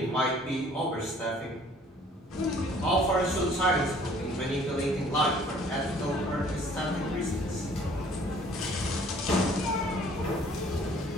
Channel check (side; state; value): both; normal; correlation 0.55